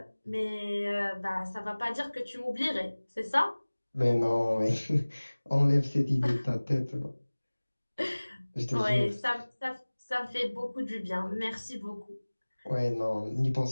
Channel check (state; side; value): inverted; both; correlation -1.00